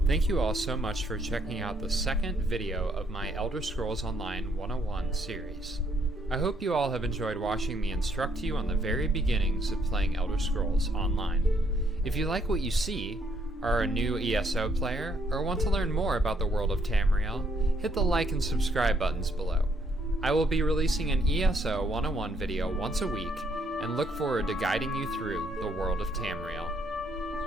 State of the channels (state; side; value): normal; both; correlation 0.70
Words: you all so much for checking out the second video of my Elder Scrolls Online 101 series. I hope you all have enjoyed watching me instruct you on the very beginnings of playing Elder Scrolls Online. If you like what you see, are a new ESO player, or want to learn more about the world of Tamriel, hit the like and subscribe buttons below. I will be releasing an ESO 101 video once a week, and look forward to guiding you through the world of Tamriel.